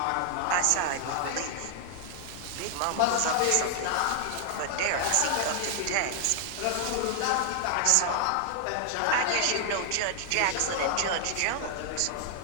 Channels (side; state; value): both; different; correlation 0.00